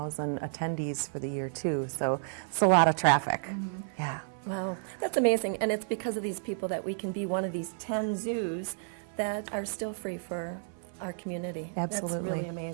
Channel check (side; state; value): left; silent; 57 dB below the other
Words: attendees for the year too. So it's a lot of traffic. Yeah. Wow, that's amazing. And it's because of these people that we can be one of these 10 zoos that are still free for our community. That's Absolutely. really